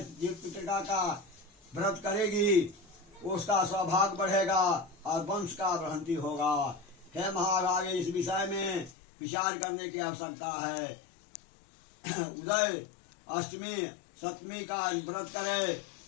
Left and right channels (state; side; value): drops out; right; at 8.9 s